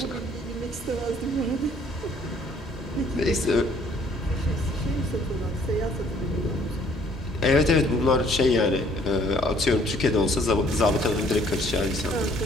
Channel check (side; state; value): both; normal; correlation 0.60